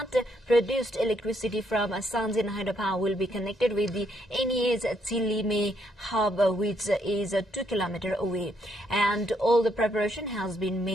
produced electricity from Sanjin Hydropower will be connected with the NEA's Chilime hub, which is 2 km away, and all the preparation has been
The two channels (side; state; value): both; normal; correlation 0.73